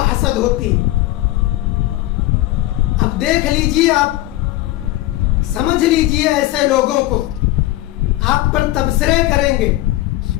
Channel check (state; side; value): quieter; right; 16.8 dB